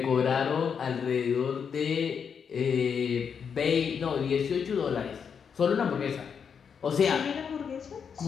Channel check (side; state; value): right; quieter; 6.8 dB